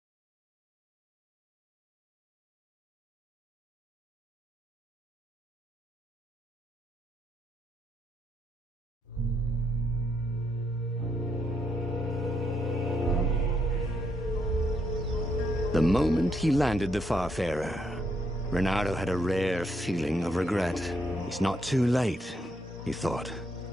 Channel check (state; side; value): normal; both; correlation 0.76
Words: The moment he landed the Farfarer, Renato had a rare feeling of regret. It's not too late, he thought.